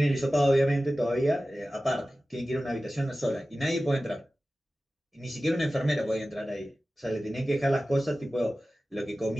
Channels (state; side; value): normal; both; correlation 0.95